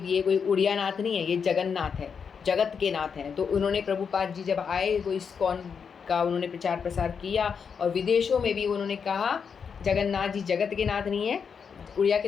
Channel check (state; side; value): quieter; right; 6.4 dB